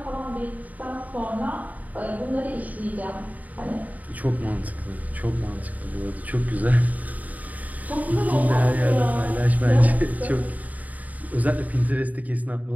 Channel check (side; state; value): left; late; 0.075 ms